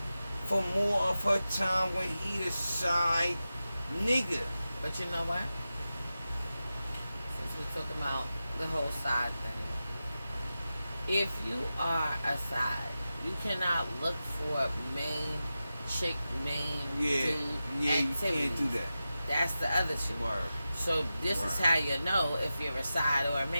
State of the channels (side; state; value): both; inverted; correlation -0.93